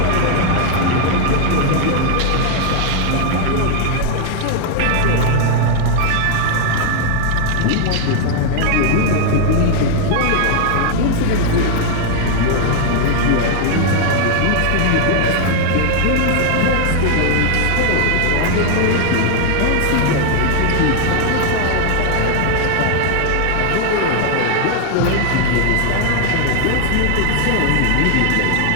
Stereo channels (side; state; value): both; different; correlation 0.00